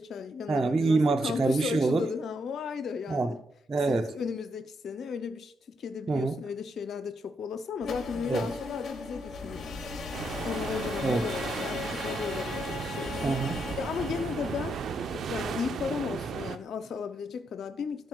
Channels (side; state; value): both; normal; correlation 0.78